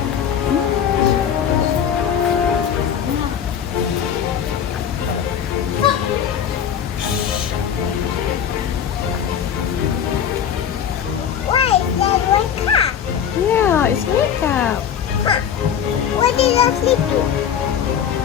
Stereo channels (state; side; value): quieter; right; 8.6 dB